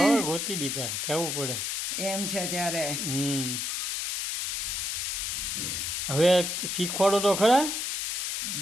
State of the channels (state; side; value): noise; left; hiss, 2 dB below the sound